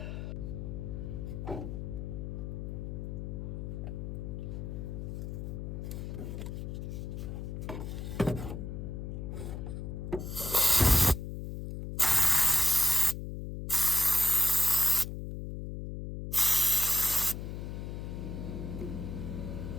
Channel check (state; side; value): noise; left; hum, 6 dB below the sound